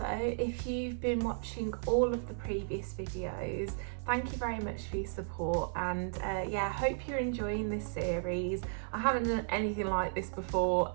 if you've been watching all of the previous videos, thank you very much for your support, and yeah, I hope you're enjoying this series. I haven't done anything like this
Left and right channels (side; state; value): left; silent; 55 dB below the other